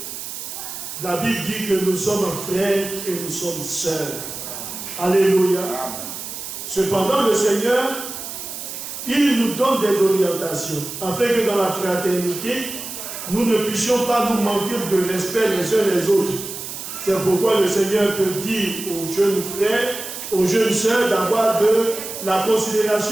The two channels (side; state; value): right; noise; hiss, 8 dB below the sound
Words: la Bible dit que nous sommes frères et nous sommes sœurs. Alléluia. Cependant, le Seigneur, il nous donne des orientations, afin que dans la fraternité, nous ne puissions pas nous manquer de respect les uns les autres. C'est pourquoi le Seigneur peut dire aux jeunes frères, aux jeunes sœurs, d'avoir de la